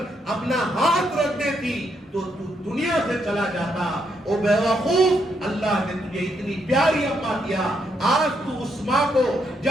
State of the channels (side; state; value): both; normal; correlation 0.77